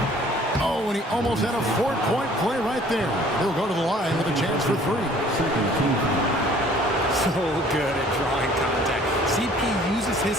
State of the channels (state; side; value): normal; both; correlation 0.54